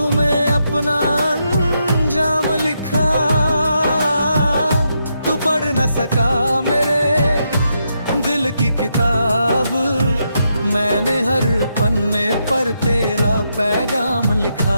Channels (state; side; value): inverted; both; correlation -0.81